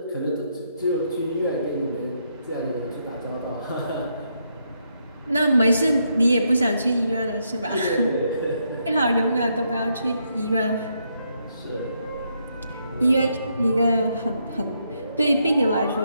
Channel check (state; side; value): inverted; both; correlation -0.78